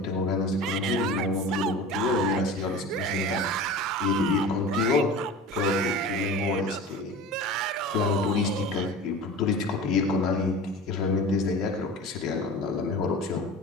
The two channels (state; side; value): normal; both; correlation 0.35